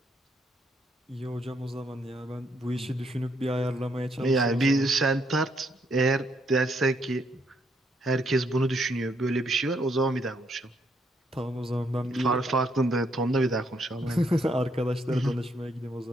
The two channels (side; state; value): both; normal; correlation 0.73